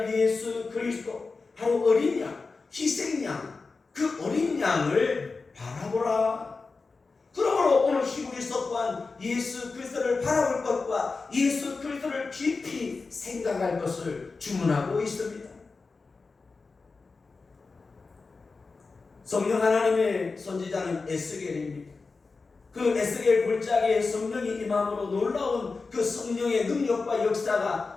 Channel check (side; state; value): right; quieter; 4.2 dB